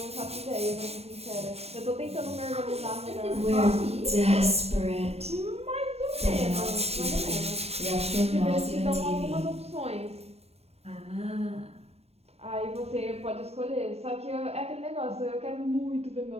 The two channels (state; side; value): late; left; 0.30 ms